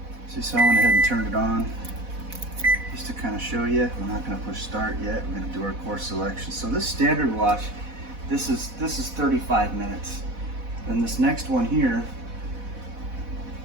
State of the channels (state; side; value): late; left; 4.1 ms